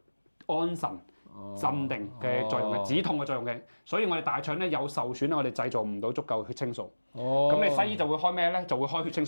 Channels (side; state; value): both; inverted; correlation -1.00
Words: 安神、鎮定嘅作用嘅，止痛嘅作用嘅。所以我哋大腸咧有受損咧，我哋製造唔到足夠血清素。哦。咁你西醫就會開咩咧？就會開血清